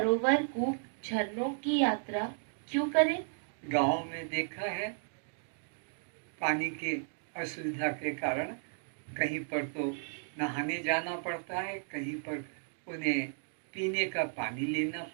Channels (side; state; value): left; silent; digital silence